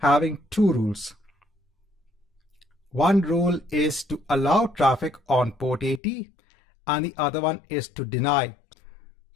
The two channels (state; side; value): drops out; right; at 6.0 s